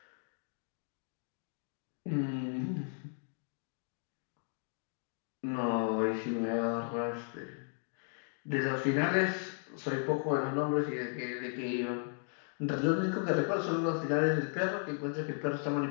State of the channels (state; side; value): silent; right; 54 dB below the other